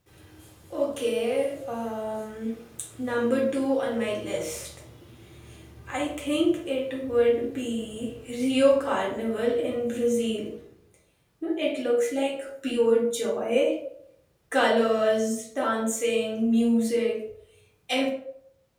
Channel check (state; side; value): identical; both; correlation 1.00